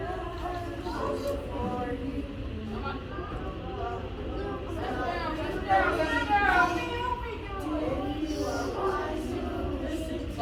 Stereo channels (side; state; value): both; identical; correlation 1.00